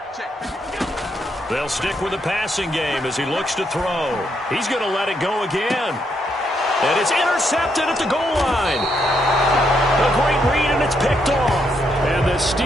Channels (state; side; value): normal; both; correlation 0.77